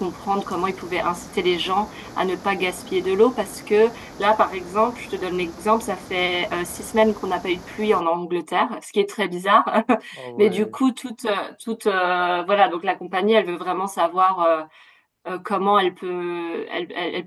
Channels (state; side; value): identical; both; correlation 1.00